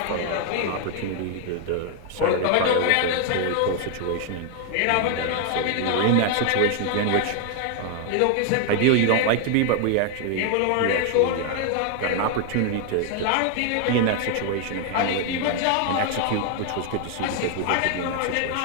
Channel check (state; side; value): different; both; correlation 0.00